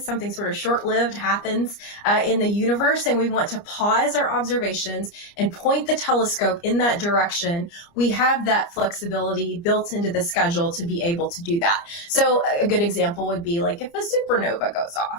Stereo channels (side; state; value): right; late; 29 ms